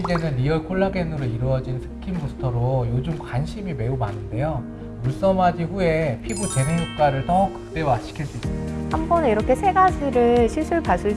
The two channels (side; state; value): both; identical; correlation 1.00